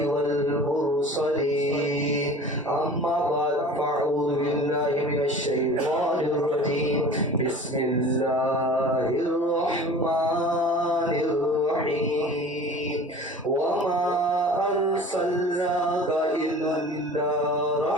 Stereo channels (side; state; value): both; normal; correlation 0.41